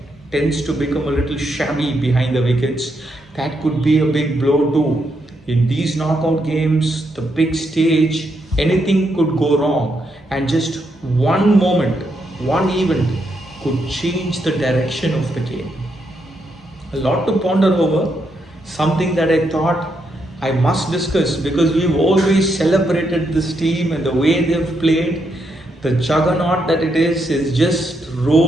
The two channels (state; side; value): normal; both; correlation 0.79